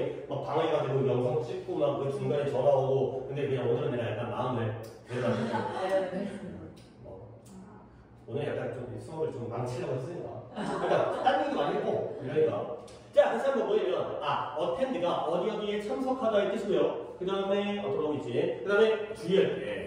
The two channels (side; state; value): both; identical; correlation 1.00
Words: 막 방해가 되고 영상 찍고 막 그 중간에 전화 오고, 근데 그냥 오늘은 내가 약간 마음을 내가지고 오늘 약간 좀 수업을 좀 망치려고 했으니까. 그러니까 딴 얘기도 많이 했고 이러니까. 자, 다시 한번 뭐냐면 attend가 어디에 참석하다의 뜻이고요. 그 다음에 돌아오고 있지. 그 다음에 주의할